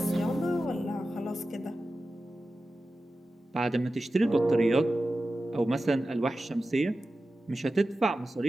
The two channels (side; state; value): both; normal; correlation 0.94